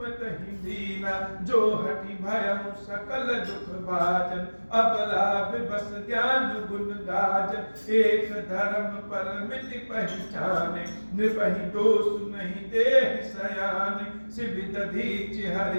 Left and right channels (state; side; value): inverted; both; correlation -1.00